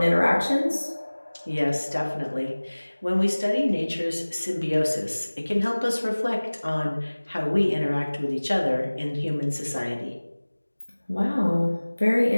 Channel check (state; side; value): inverted; both; correlation -1.00